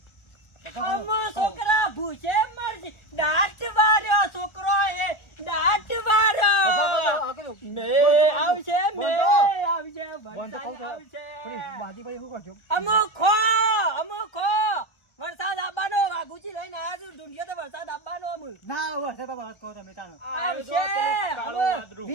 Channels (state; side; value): late; right; 1.4 ms